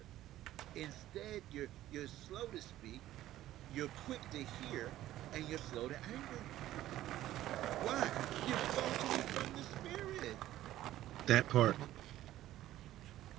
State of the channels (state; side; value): quieter; left; 14.1 dB